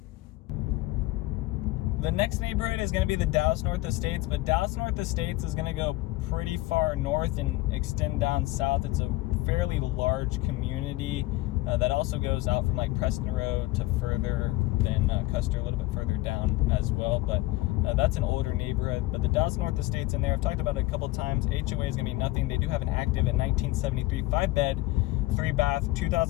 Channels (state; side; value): quieter; right; 18.8 dB